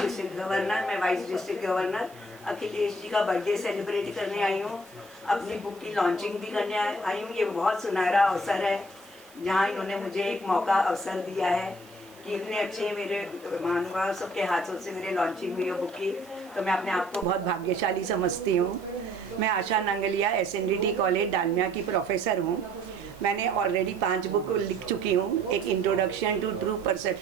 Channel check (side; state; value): right; noise; hiss, 26 dB below the sound